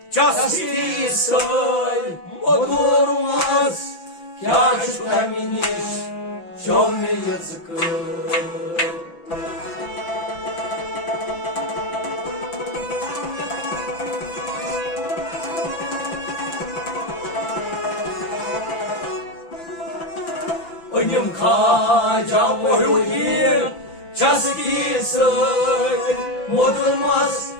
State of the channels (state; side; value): late; right; 5.9 ms